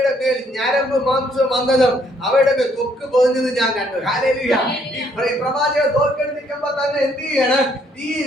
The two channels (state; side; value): normal; both; correlation 0.68